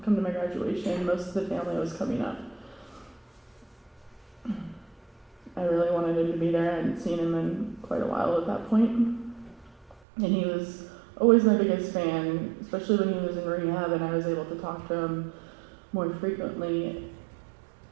come to my graduation. Most of the family was coming up. I really wanted him to be there. I hadn't seen him in quite a while at that point. And he was always my biggest fan, especially when he was in rehab and I was able to talk to him more frequently.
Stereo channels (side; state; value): left; drops out; at 10.0 s